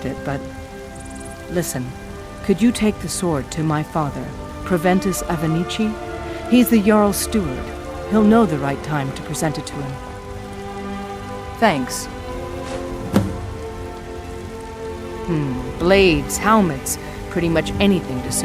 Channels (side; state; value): both; identical; correlation 1.00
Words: it, but... Listen, could you take the sword to my father, Proventus Avenici? He's the Jarl's steward. He'll know the right time to present it to him. Thanks. Blades, helmets, pretty much anything to